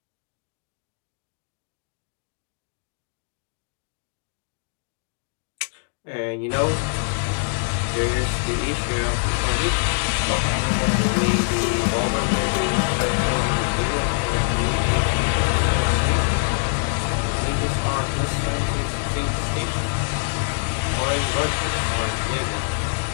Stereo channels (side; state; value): right; silent; 63 dB below the other